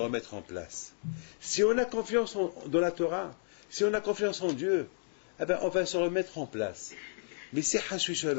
en place. Si on a confiance dans la Torah, si on a confiance en Dieu, eh ben on va se remettre en place. Mais si Hashui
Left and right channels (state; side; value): silent; right; digital silence